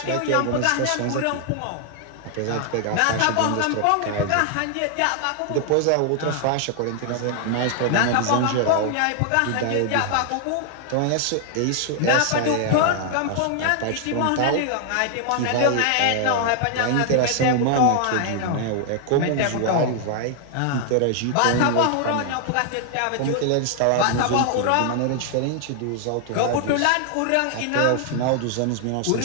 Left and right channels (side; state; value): both; different; correlation 0.00